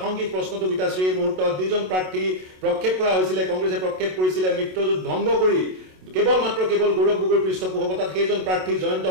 প্ৰশ্নটো গীতাশ্ৰী এই মুহূৰ্তত দুজন প্ৰাৰ্থী প্ৰক্ষেপ কৰা হৈছিলে কংগ্ৰেছে প্ৰক্ষেপ কৰিছিলে মিত্ৰজোঁট ভংগ কৰি কেৱল গৌৰৱ গগৈৰ পৃষ্ঠপোষকতাত সেইজন প্ৰাৰ্থী জয়ন্ত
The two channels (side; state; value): left; late; 27 ms